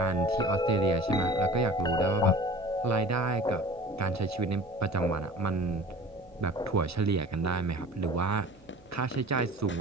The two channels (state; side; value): noise; right; hum, 27 dB below the sound